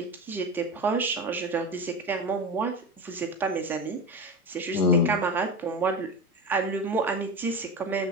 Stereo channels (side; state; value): both; normal; correlation 0.24